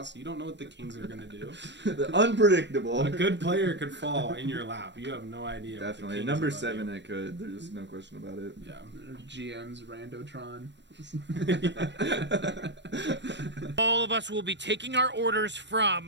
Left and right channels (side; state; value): left; late; 0.52 ms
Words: You don't know what the Kings are going to do. The unpredictable. A good player could fall in your lap. You have no idea. Definitely. What the Number Kings 7 it could. There's no question about it. Yeah. GM's Randotron. All of us will be taking our orders